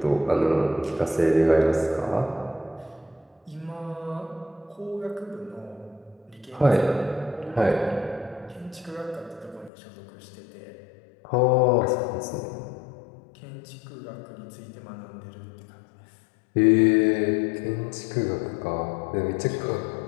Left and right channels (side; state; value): right; drops out; at 9.7 s